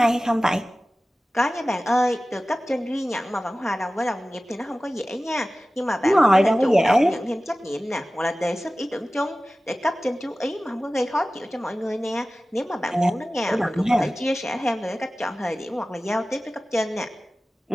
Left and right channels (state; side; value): normal; both; correlation 0.96